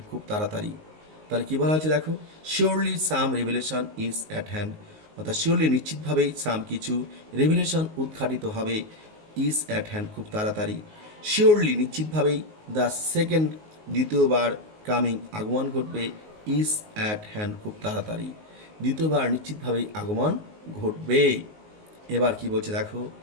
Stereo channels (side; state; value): left; late; 19 ms